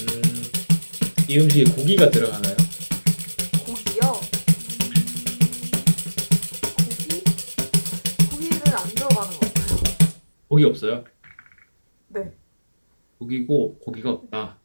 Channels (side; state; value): both; inverted; correlation -1.00